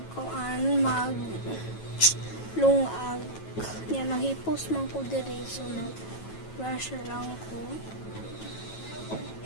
Yan, naghipos man ko diri, so nag-brush lang ko.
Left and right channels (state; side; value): late; right; 9.2 ms